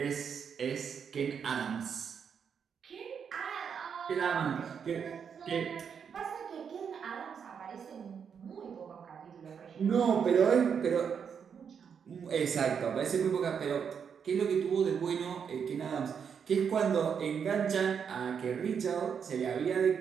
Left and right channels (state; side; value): quieter; left; 7.1 dB